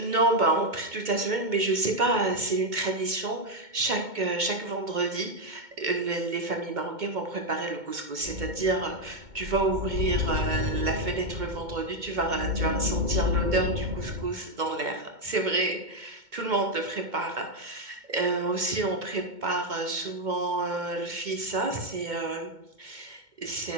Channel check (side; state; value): left; late; 2.2 ms